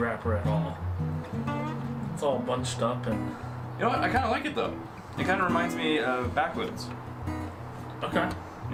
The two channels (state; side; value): identical; both; correlation 1.00